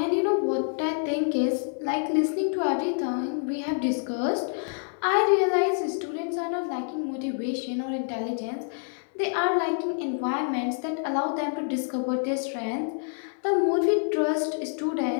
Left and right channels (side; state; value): right; silent; 60 dB below the other